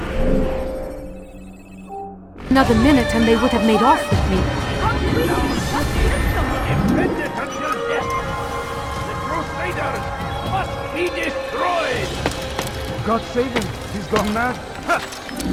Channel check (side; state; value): both; identical; correlation 1.00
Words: Another minute and they would have made off with me. Defended until death! The Crusaders must be destroyed! God save him. He's gone mad.